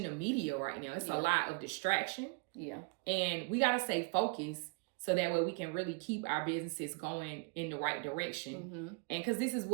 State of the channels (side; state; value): left; quieter; 32.7 dB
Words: the media right now. It's a lot of distraction. Yeah. And we got to stay focused so that way we can really keep our businesses going in the right direction. And because this is